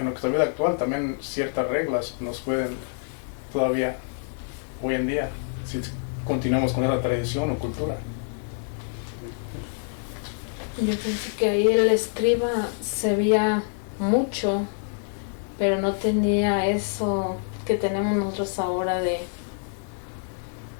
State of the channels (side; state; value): right; silent; 61 dB below the other